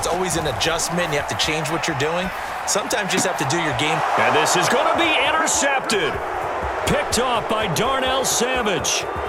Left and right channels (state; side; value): identical; both; correlation 1.00